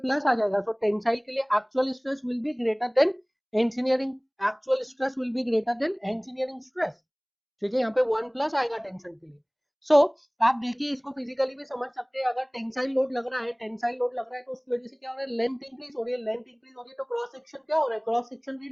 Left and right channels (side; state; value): both; identical; correlation 1.00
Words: आ जाएगा. सो टेंसाइल के लिए actual stress will be greater than engineering, actual stress will be greater than engineering stress. ठीक है, यहाँ पे 1 प्लस आएगा टेंशन के लिए. सो आप देखिए इसको फिजिकली भी समझ सकते हैं. अगर टेंसाइल लोड लग रहा है, टेंसाइल लोड लग रहा है तो उसकी वजह से क्या हो रहा है? लेंथ इंक्रीज हो रही है. लेंथ इंक्रीज हो रही है तो क्रॉस सेक्शन क्या हो रहा है? क्रॉस सेक्शन